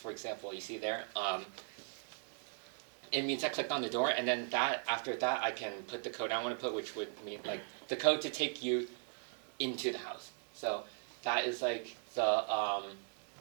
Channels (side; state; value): left; silent; 52 dB below the other